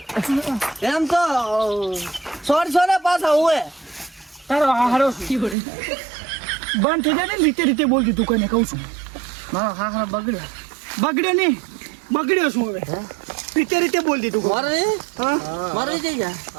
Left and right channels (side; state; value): left; drops out; at 5.6 s